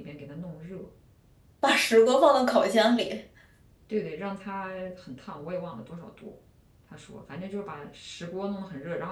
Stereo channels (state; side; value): identical; both; correlation 1.00